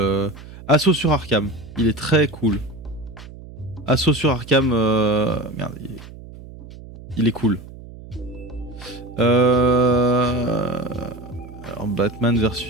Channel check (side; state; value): right; noise; hum, 16 dB below the sound